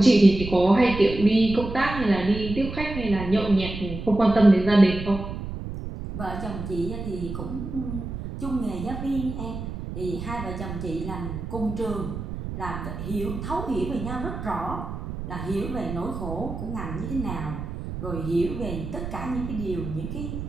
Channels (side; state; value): right; noise; rumble, 7 dB below the sound